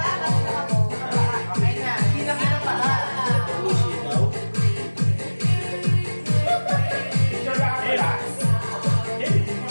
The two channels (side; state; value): both; inverted; correlation -1.00